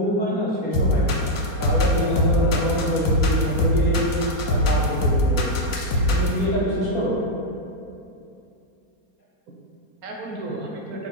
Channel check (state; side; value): late; left; 4.3 ms